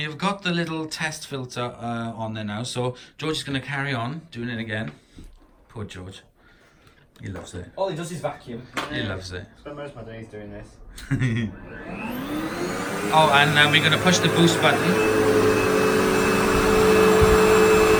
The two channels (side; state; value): both; identical; correlation 1.00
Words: have got the little test filter on there now. So George is going to carry on doing it again. Poor George. He loves it. All he does is vacuum. He loves it. Spend most of my days doing this. Oh, and we're going to push the boost button.